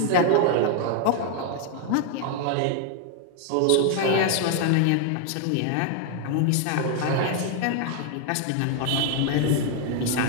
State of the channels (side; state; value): both; different; correlation 0.00